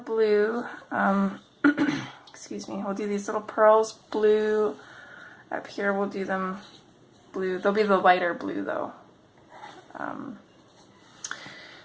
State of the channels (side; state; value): both; identical; correlation 1.00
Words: excuse me, we'll do these little pearls blue. Up here we'll do them blue. They'll be the lighter blue though.